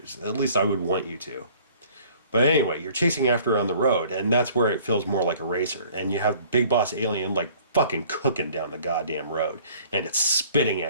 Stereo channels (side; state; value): both; inverted; correlation -0.54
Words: At least I would want you to. But anyway, you're chasing after her on the road, and that's where it feels more like a racer. And you have Big Boss Alien like fucking cooking down the goddamn road, and it's spitting